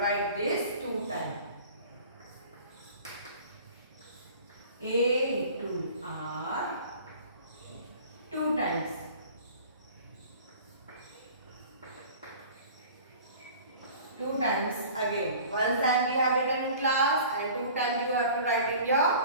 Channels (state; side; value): inverted; both; correlation -0.44